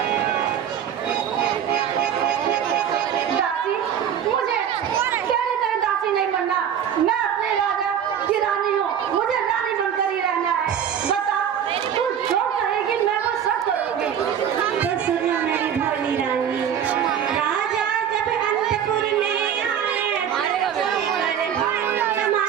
दासी, मुझे तेरी तरह दासी नहीं बनना। मैं अपने राजा की रानी हूँ, मुझे रानी बनकर ही रहना है। बता, तू जो कहेगी मैं वो सब करूँगी। तो सुनो मेरी भोली रानी, राजा जब अंतपुर में आए, बड़े भक्त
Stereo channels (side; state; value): left; quieter; 8.9 dB